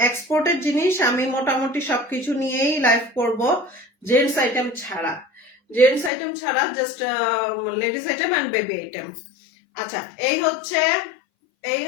এক্সপোর্টের জিনিস আমি মোটামুটি সবকিছু নিয়েই লাইভ করব, জেন্টস আইটেম ছাড়া, জেন্টস আইটেম ছাড়া, just ladies item and baby item. আচ্ছা এই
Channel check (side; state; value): right; drops out; at 6.1 s